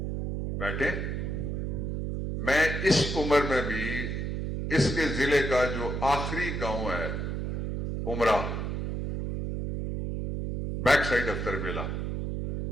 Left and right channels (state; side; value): noise; right; hum, 2 dB below the sound